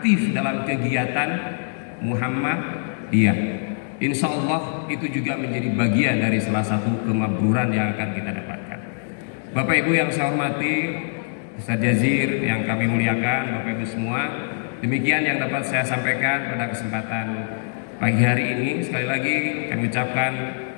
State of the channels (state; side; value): silent; right; 63 dB below the other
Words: dalam kegiatan Muhammadiyah. Insya Allah itu juga menjadi bagian dari salah satu kemabruran yang akan kita dapatkan. Bapak Ibu yang saya hormati, Ustaz Jazir yang kami muliakan, Bapak Ibu semua, demikian yang dapat saya sampaikan pada kesempatan pagi hari ini. Sekali lagi kami ucapkan